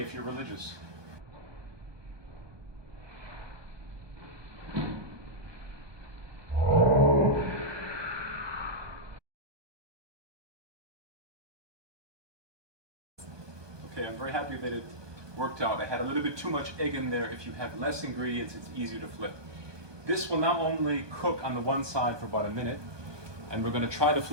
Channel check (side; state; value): left; late; 1.2 ms